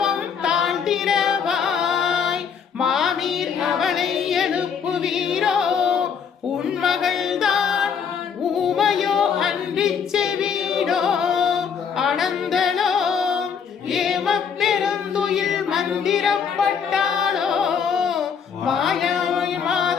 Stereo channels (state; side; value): quieter; right; 6.9 dB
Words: தாழ்த்திரவாய் மாமீர் அவளை எழுப்புவீரோ உன் மகள்தான் ஊமையோ அன்றிச்சு வீடோ அனந்தளோ ஏம பெருந்துயில் மந்திரப்பட்டாளோ மாயாய்